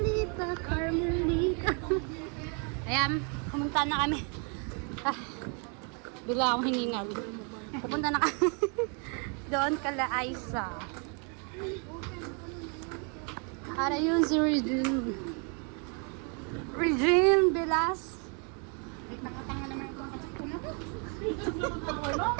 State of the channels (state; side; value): quieter; left; 37.8 dB